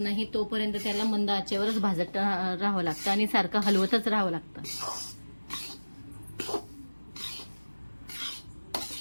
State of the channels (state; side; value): inverted; both; correlation -1.00